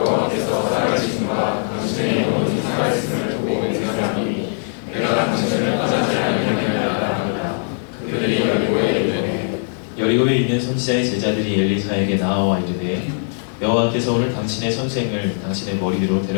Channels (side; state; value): right; silent; digital silence